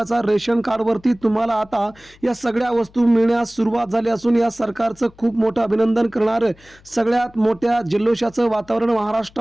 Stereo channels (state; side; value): noise; left; hum, 27 dB below the sound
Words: रेशन कार्डवरती तुम्हाला आता या सगळ्या वस्तू मिळण्यास सुरुवात झाली असून या सरकारचं खूप मोठं अभिनंदन करणारं सगळ्यात मोठ्या जल्लोषाचं वातावरण